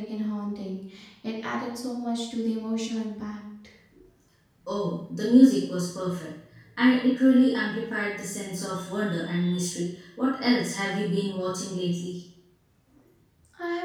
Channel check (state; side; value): identical; both; correlation 1.00